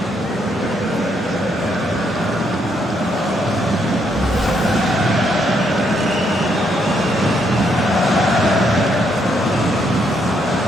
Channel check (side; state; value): both; normal; correlation 0.74